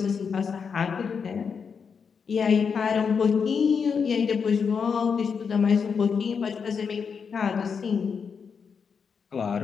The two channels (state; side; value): quieter; right; 6.1 dB